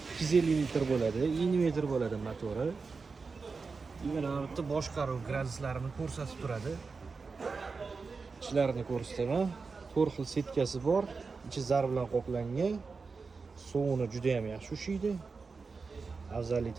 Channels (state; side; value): quieter; left; 4.6 dB